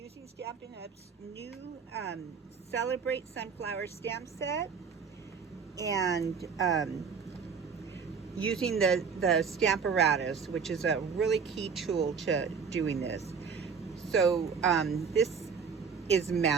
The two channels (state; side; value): quieter; left; 5.9 dB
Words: Stampin' Up's new Celebrate Sunflower stamp set and using the Stamparatus, which is a really key tool to doing this. So this is